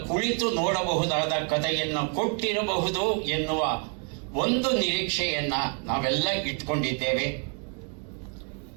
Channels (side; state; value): left; quieter; 39.4 dB